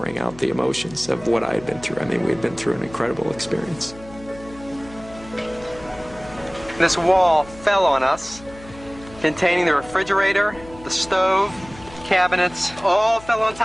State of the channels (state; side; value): noise; left; hum, 19 dB below the sound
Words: out the emotions of what I had been through. I mean, we had been through an incredible experience. This wall fell on us, containing the refrigerator, the stove, cabinets, all fell on